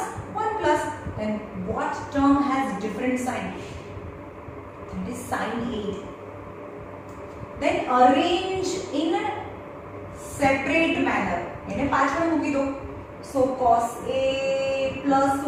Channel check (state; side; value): identical; both; correlation 1.00